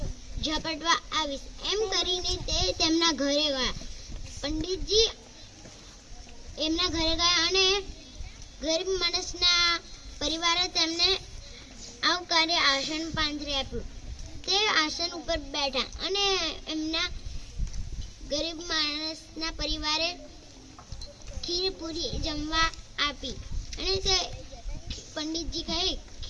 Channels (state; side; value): identical; both; correlation 1.00